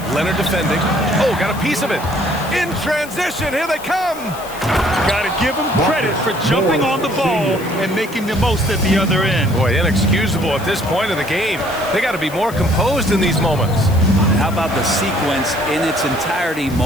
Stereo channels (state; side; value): noise; left; hiss, 17 dB below the sound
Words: Leonard defending. Oh, got a piece of it. In transition, here they come. Got to give him credit for jumping on the ball and making the most at the other end. Boy, inexcusable at this point in the game. They got to be more composed in these moments. How about the sequence in its entirety?